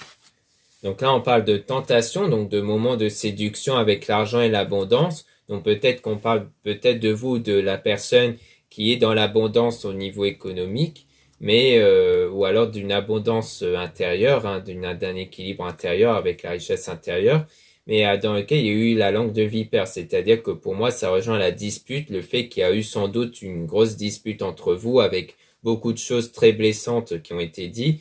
Donc là, on parle de tentation, donc de moments de séduction avec l'argent et l'abondance. Donc peut-être qu'on parle peut-être de vous, de la personne qui est dans l'abondance au niveau économique, mais ou alors d'une abondance intérieure, hein, d'un équilibre intérieur avec la richesse intérieure, mais dans lequel il y a eu la langue de vipère. C'est-à-dire que pour moi, ça rejoint la dispute, le fait qu'il y a eu sans doute une grosse dispute entre vous avec beaucoup de choses très blessantes qui ont été dites.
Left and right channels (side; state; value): both; identical; correlation 1.00